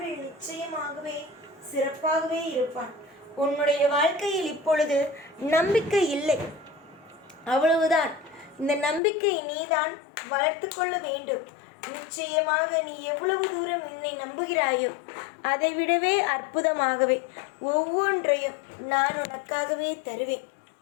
நிச்சயமாகவே சிறப்பாகவே இருப்பான். உன்னுடைய வாழ்க்கையில் இப்பொழுது நம்பிக்கை இல்லை, அவ்வளவுதான். இந்த நம்பிக்கை நீதான் வளர்த்து கொள்ள வேண்டும். நிச்சயமாக நீ எவ்வளவு தூரம் என்னை நம்புகிறாயோ அதை விடவே அற்புதமாகவே ஒவ்வொன்றையும் நான் உனக்காகவே தருவேன்.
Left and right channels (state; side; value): drops out; right; at 9.0 s